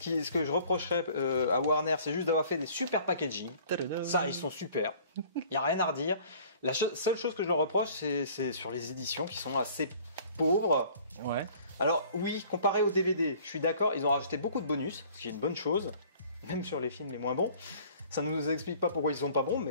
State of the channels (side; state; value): both; inverted; correlation -0.52